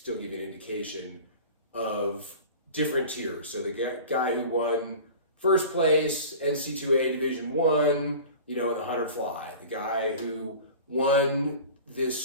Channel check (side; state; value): both; inverted; correlation -0.39